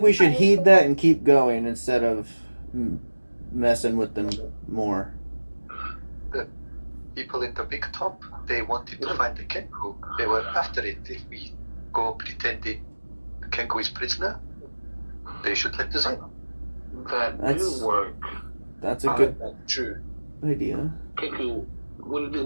we should heed that and keep going instead of messing with them more. People in the big top, they wanted to find the Kenku. They were after it. If we go pretending the Kenku is prisoner, they should let us in. That That's- do work. That's a good True. idea. Kiku, what do you think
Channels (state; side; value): inverted; both; correlation -1.00